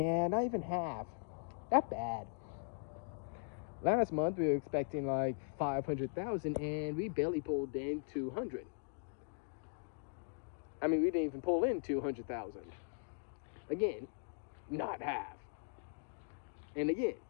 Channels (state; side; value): silent; right; digital silence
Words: not even half. Not bad. Last month we were expecting like 500,000, and we barely pulled in 200. I mean, we didn't even pull in 200,000. Again, not half. And again,